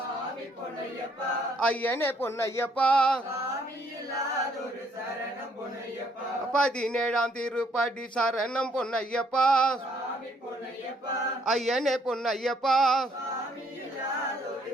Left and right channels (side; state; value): both; normal; correlation 0.68